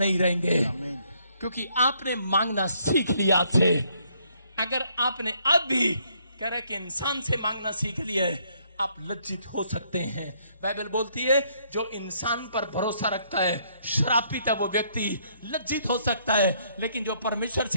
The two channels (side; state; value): both; inverted; correlation -0.69